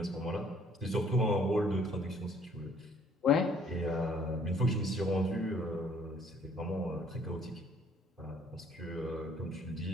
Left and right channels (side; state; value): both; normal; correlation 0.60